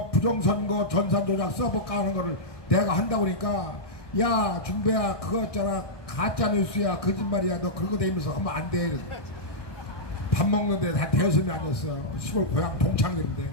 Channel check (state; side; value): late; right; 1.2 ms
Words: 부정선거 전산조작 써볼까 하는 거를 내가 한다고 그러니까, 야 중배야 그거 있잖아 가짜뉴스야 거짓말이야 너 그거 대면서 하면 안 돼. 밥 먹는데 다 대여섯이 아니었어. 시골 고향 동창들인데.